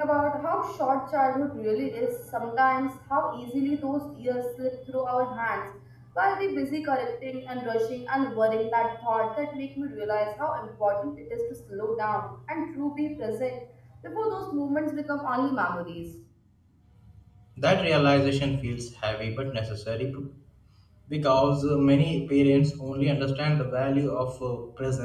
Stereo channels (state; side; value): identical; both; correlation 1.00